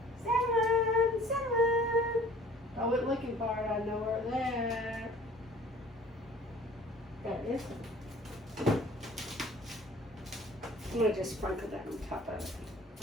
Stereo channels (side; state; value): both; normal; correlation 0.50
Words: Cinnamon, cinnamon. I went looking for it. I know where it's at. Got this one. I'm going to just sprinkle that on top of it.